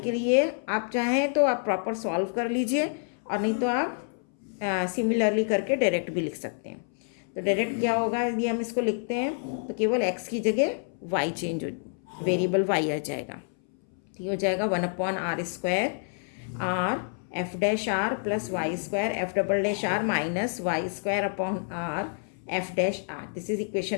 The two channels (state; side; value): silent; right; 59 dB below the other